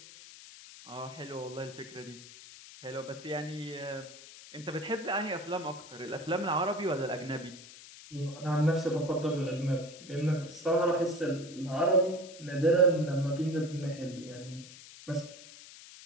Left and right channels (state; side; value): noise; left; hiss, 17 dB below the sound